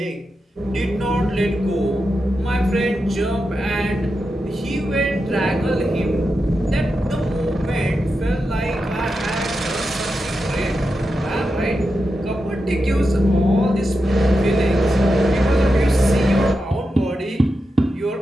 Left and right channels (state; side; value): normal; both; correlation 0.89